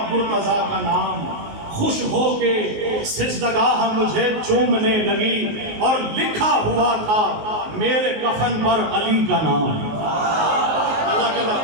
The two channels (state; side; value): late; left; 19 ms